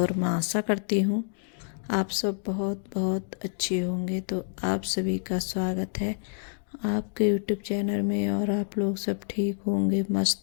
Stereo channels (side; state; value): right; silent; digital silence